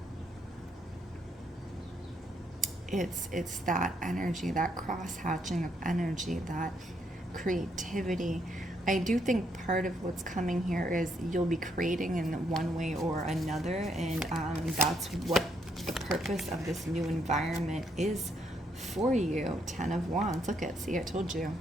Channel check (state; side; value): normal; both; correlation 0.74